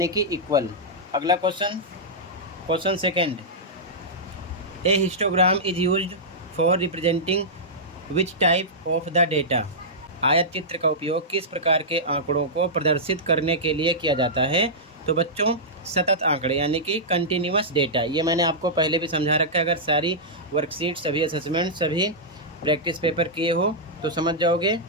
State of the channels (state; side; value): normal; both; correlation -0.12